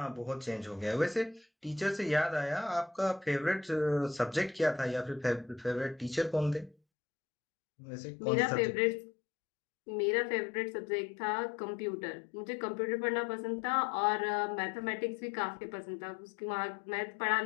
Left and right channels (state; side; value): drops out; right; at 6.8 s